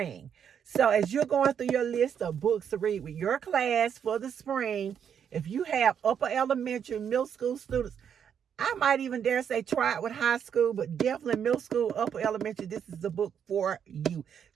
So as you're going through your list of books to read with your class for the spring, if you have upper elementary, middle school students, I might even dare say try it with high school, but definitely middle school, upper elementary, this is the book for you.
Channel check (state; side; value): quieter; left; 8.1 dB